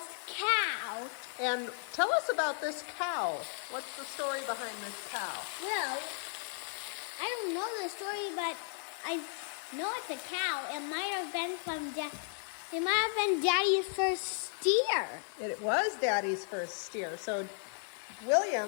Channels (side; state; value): right; silent; 55 dB below the other